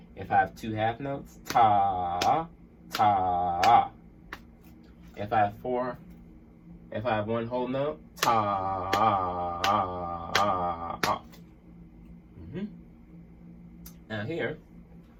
If I have 2 1/2 notes, ta, ta. If I have 1 whole note, ta. Now here,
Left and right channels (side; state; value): both; identical; correlation 1.00